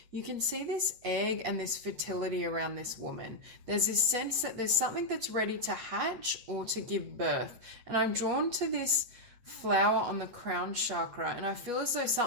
you can see this egg and this fertility around this woman. There's this sense that there's something that's ready to hatch or to give birth. And I'm drawn to this flower on the crown chakra, and I feel as though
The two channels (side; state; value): left; late; 8.3 ms